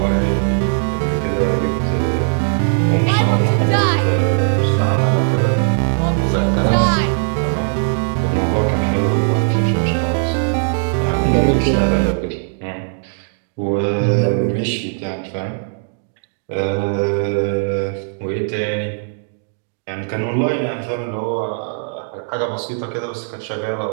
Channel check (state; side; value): silent; left; digital silence